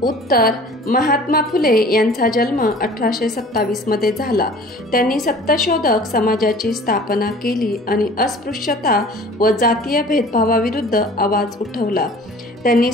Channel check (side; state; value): both; normal; correlation 0.46